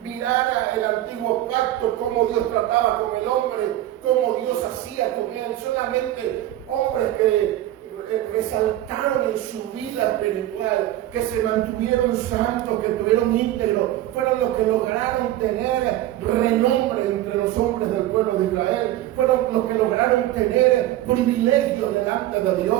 Mirar el antiguo pacto, cómo Dios trataba con el hombre, cómo Dios hacía con él. Solamente hombres que resaltaron en su vida espiritual, que se mantuvieron santos, que tuvieron íntegros, fueron los que lograron tener renombre entre los hombres del pueblo de Israel, fueron los que lograron tener privilegios delante de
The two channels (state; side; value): quieter; left; 14.2 dB